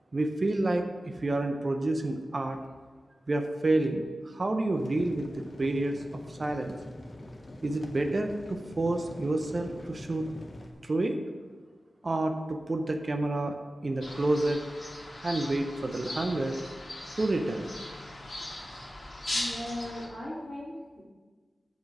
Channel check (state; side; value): normal; both; correlation 0.95